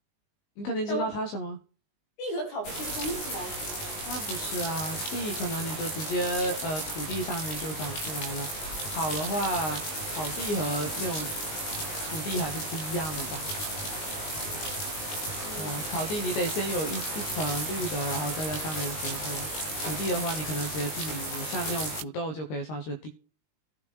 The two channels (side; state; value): right; late; 19 ms